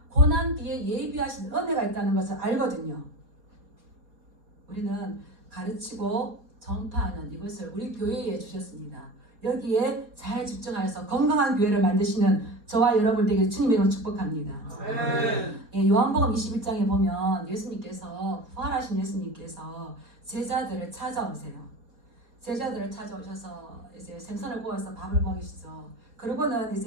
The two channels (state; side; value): late; left; 4.2 ms